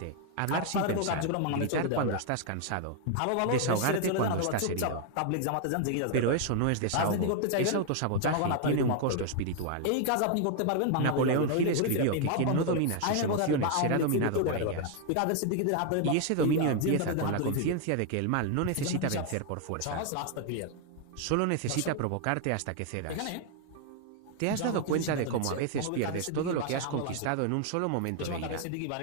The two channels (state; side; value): different; both; correlation 0.00